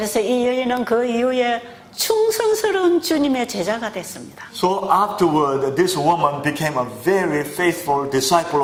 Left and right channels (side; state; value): both; identical; correlation 1.00